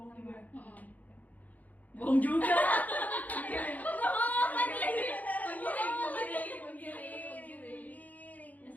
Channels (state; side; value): late; right; 0.079 ms